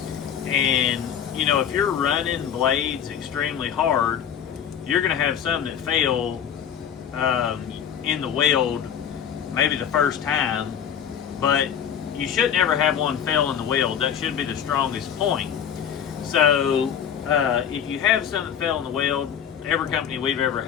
And, if you're running blades extremely hard, you're going to have some that fail in the weld maybe the first time, but you should never have one fail in the weld. That should be the strongest point. So if you have some that fail in the weld, every company we've ever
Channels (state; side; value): quieter; right; 8.7 dB